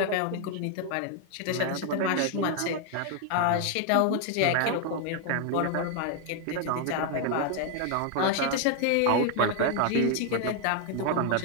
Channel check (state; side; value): different; both; correlation 0.00